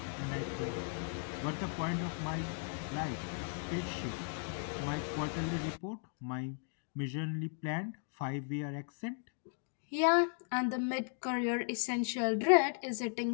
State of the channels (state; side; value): silent; right; 53 dB below the other